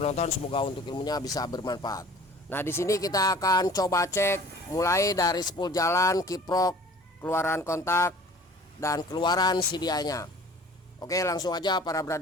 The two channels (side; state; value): both; normal; correlation 0.47